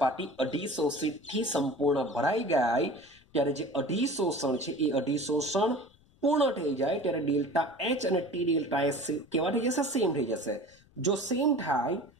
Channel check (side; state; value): left; noise; rumble, 30 dB below the sound